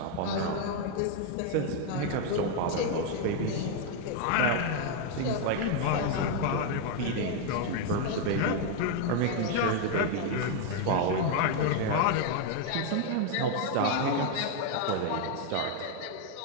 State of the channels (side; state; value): both; different; correlation 0.01